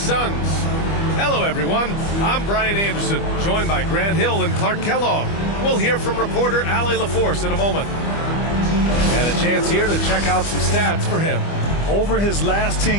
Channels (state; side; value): late; right; 25 ms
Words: Suns. Hello everyone, I'm Brian Anderson, joined by Grant Hill and Clark Kellogg. We'll hear from reporter Allie LaForce in a moment. And a chance here to check out some stats for him. Over his last